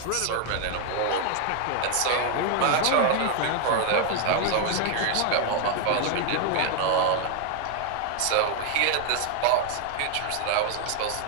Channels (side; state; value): both; different; correlation 0.00